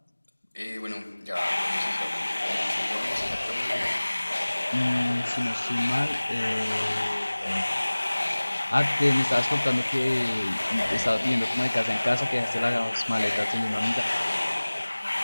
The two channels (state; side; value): inverted; both; correlation -1.00